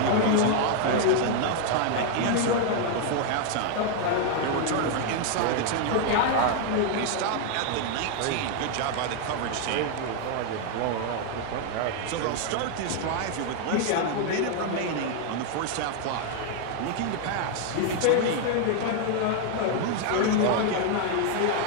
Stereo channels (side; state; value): both; different; correlation 0.00